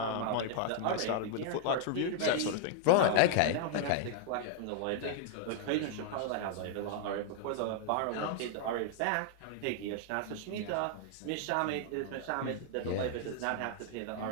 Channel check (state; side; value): different; both; correlation -0.01